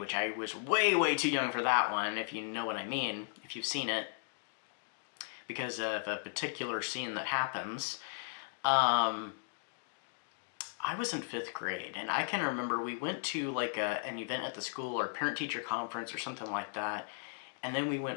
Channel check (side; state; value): right; silent; digital silence